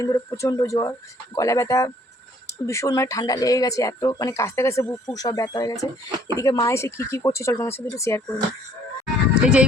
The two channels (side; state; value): both; normal; correlation 0.60